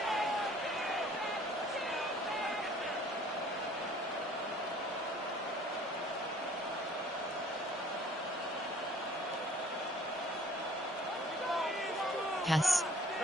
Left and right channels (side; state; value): both; normal; correlation 0.54